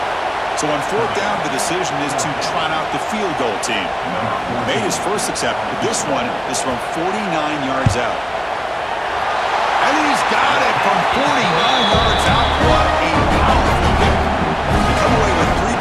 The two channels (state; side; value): identical; both; correlation 1.00